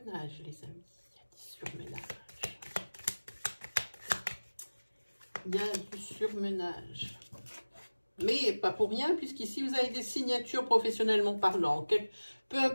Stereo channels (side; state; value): both; inverted; correlation -1.00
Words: les amis. Il y a du surmenage. Il y a du surmenage. Mais pas pour rien, puisqu'ici, vous avez des signatures professionnellement parlant. Peu